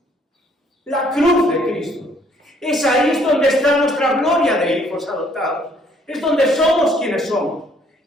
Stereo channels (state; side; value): normal; both; correlation 0.63